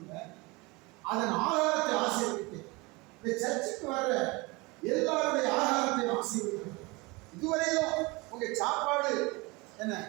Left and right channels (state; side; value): quieter; left; 25.0 dB